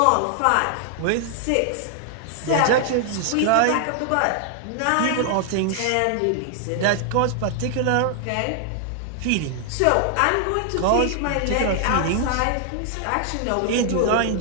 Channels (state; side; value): different; both; correlation 0.00